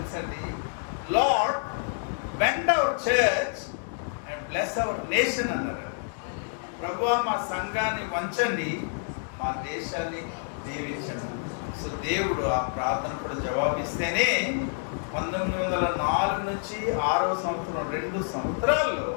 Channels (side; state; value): right; silent; 59 dB below the other